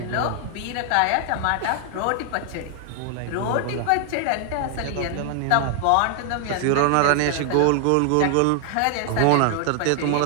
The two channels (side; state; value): both; different; correlation 0.00